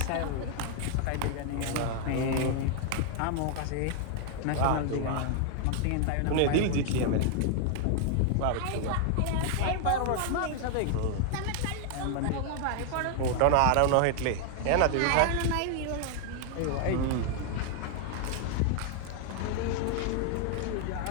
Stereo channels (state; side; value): different; both; correlation 0.00